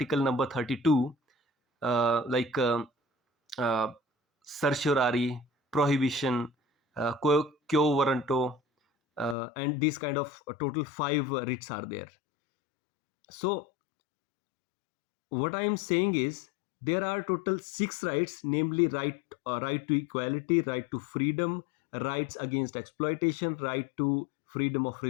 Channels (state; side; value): drops out; right; at 9.3 s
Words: number 32, like uh, certiorari, prohibition, quo warranto, and these kind of total five writs are there. So what I am saying is there are total six rights, namely right to equality, right to freedom, rights against exploitation, right to freedom of